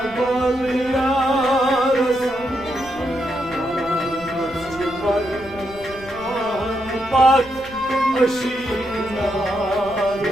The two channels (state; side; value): noise; left; rumble, 19 dB below the sound